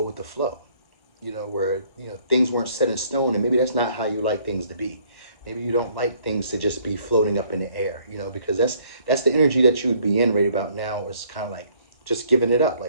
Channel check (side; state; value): right; late; 1.1 ms